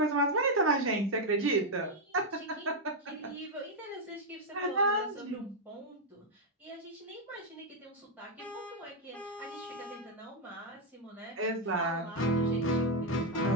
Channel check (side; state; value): both; normal; correlation 0.00